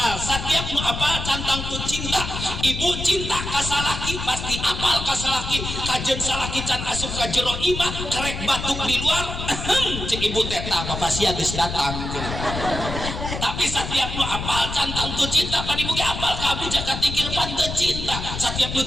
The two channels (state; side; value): noise; left; rumble, 6 dB below the sound